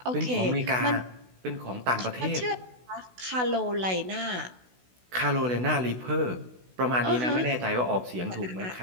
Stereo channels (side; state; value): left; late; 16 ms